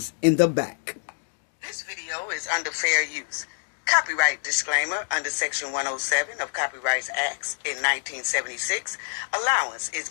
in the back. This video is under fair use. Copyright disclaimer under Section 107 of Copyrights Acts in 1976. Allowance is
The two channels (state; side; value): silent; right; digital silence